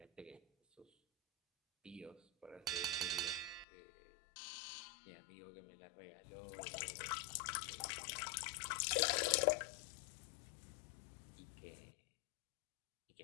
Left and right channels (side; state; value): right; drops out; at 3.7 s